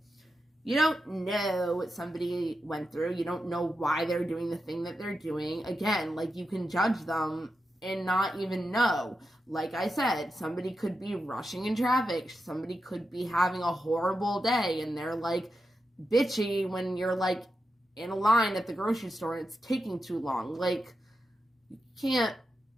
you don't know what somebody went through. You don't know why they're doing the thing that they're doing. Again, like, you can judge them and not even know. Like I said, somebody could be rushing in traffic. Somebody could be having a horrible day and they're like bitchy when you're like in a line at the grocery store and it's taking too long. Like, you can't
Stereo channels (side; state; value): both; normal; correlation 0.88